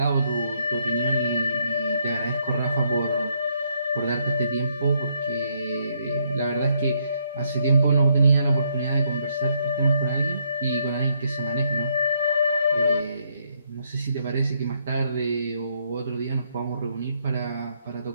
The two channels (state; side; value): inverted; both; correlation -0.73